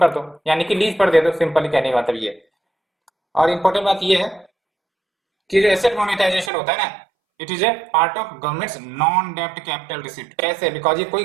दो, यानी कि लीज पर दे दो, सिंपली कहने का मतलब ये। और इंपॉर्टेंट बात ये है कि जो एसेट मोनेटाइजेशन होता है ना, it is a part of governments non डेब्ट कैपिटल रिसिप्ट। कैसे? बिकॉज ये कोई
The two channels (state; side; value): drops out; left; at 6.5 s